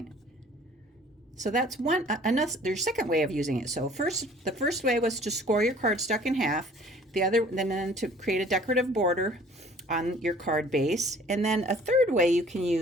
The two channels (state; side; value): normal; both; correlation 0.52